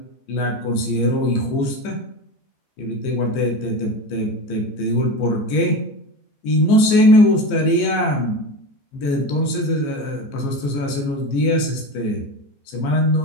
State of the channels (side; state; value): right; late; 15 ms